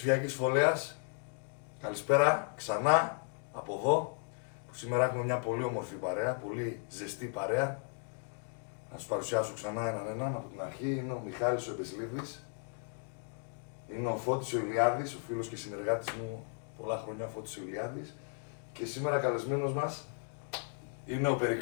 φωλέας, καλησπέρα ξανά από εδώ, που σήμερα έχουμε μια πολύ όμορφη παρέα, πολύ ζεστή παρέα. Να σας παρουσιάσω ξανά έναν από την αρχή. Είναι ο Μιχάλης ο Εμπεσλίδης, είναι ο Φώτης ο Ηλιάδης, ο φίλος και συνεργάτης μου πολλά χρόνια, ο Φώτης ο Ηλιάδης. Και σήμερα καλεσμένος μας είναι ο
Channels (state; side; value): silent; right; 54 dB below the other